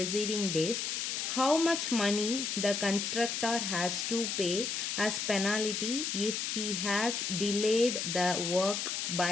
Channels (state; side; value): noise; left; hiss, 2 dB below the sound